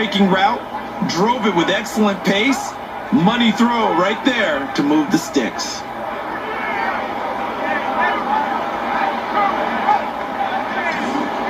route, drove it with excellent pace. Money throw right there to move the sticks.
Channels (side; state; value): both; identical; correlation 1.00